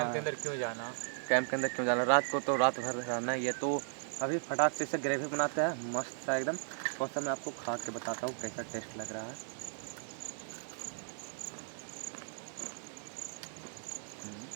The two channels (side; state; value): left; silent; digital silence